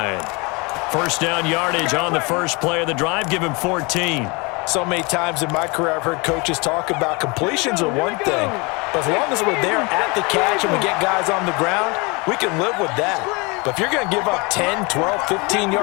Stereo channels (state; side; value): quieter; right; 28.1 dB